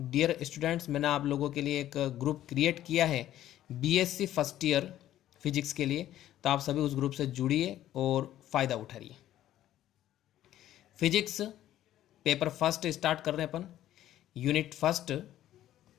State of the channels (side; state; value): right; quieter; 12.8 dB